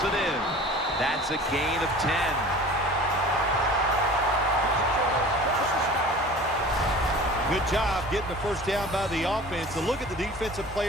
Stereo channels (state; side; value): normal; both; correlation 0.41